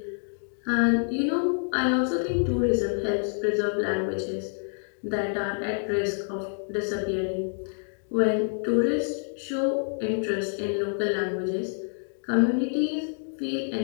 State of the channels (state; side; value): silent; right; 60 dB below the other